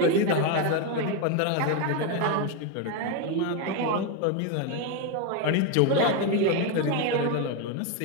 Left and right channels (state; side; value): different; both; correlation 0.02